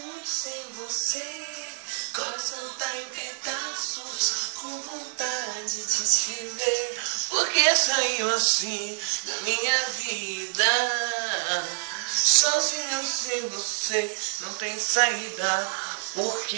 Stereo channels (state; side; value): silent; left; digital silence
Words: sem você. Coração tá em pedaços, com vontade de te ver. Porque saiu assim da minha vida. Sozinho sem você não tem saída. Por